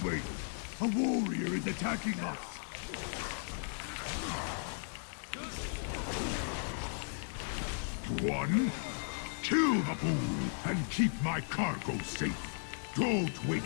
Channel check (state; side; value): silent; right; digital silence